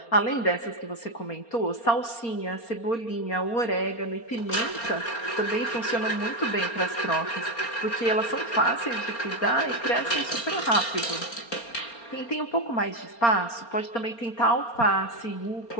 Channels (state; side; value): late; right; 4.3 ms